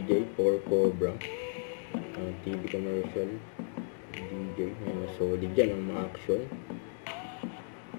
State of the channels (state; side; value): silent; right; 55 dB below the other